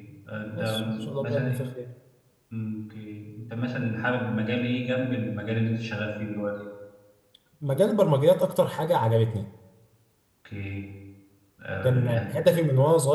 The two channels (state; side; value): identical; both; correlation 1.00